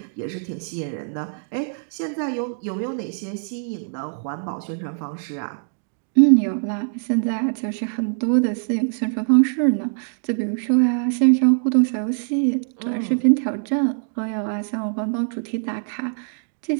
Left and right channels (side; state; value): left; silent; digital silence